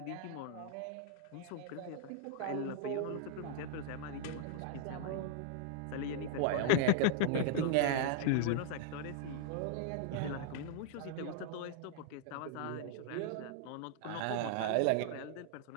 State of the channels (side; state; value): both; different; correlation -0.01